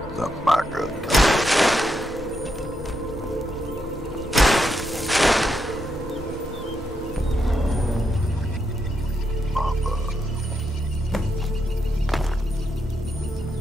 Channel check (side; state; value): both; normal; correlation 0.82